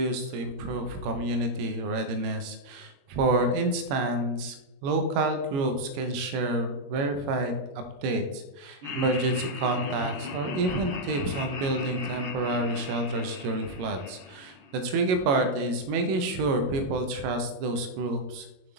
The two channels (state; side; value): late; left; 21 ms